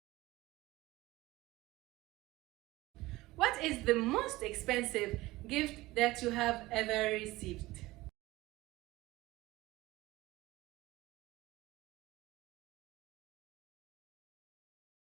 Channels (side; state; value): left; quieter; 19.0 dB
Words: What is the most expensive gift that you have ever received?